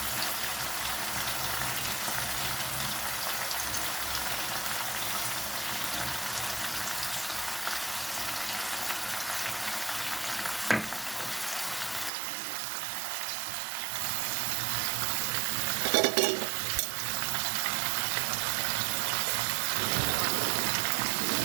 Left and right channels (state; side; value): drops out; left; at 12.1 s